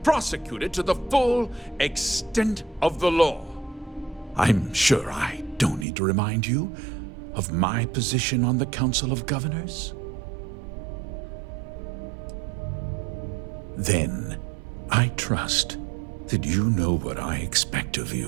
prosecuted to the full extent of the law. I'm sure I don't need to remind you of my position on the Council of Governors. Then, I trust that you know what I expect of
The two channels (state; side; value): drops out; left; at 5.9 s